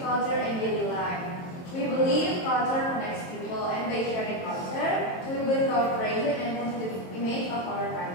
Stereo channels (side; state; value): right; late; 22 ms